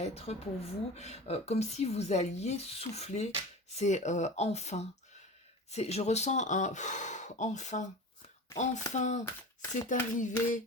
pour vous comme si vous alliez souffler. C'est enfin. Je ressens un enfin. Enfin, c'est arrivé,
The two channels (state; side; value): normal; both; correlation 0.33